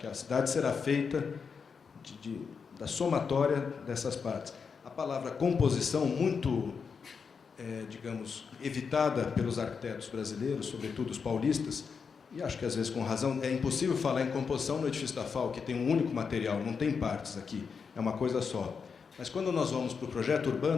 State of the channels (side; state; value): right; quieter; 5.8 dB